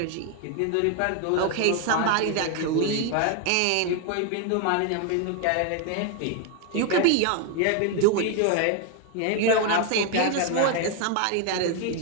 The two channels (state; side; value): different; both; correlation 0.01